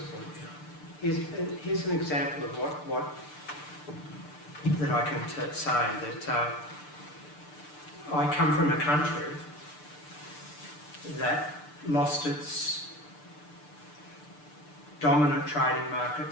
point. Here's an example of what that I can say, that I come from a country that lost its dominant trading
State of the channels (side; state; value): right; late; 6.8 ms